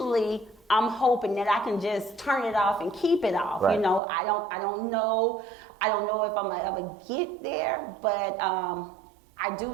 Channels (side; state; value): left; drops out; at 4.0 s